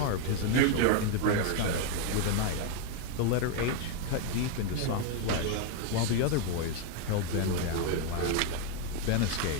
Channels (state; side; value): different; both; correlation 0.01